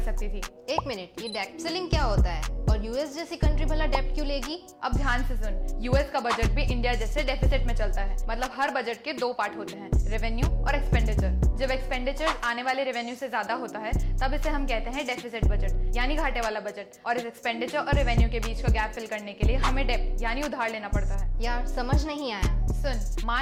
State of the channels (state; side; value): identical; both; correlation 1.00